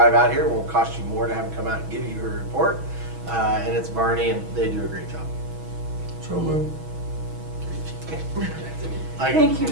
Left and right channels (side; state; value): left; late; 6.2 ms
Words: out here, it won't cost you more to have them come out and give you a report. And it's Barney, and they do a great job. So moved. Thank you,